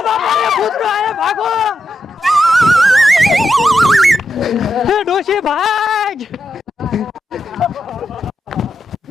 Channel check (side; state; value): both; normal; correlation 0.85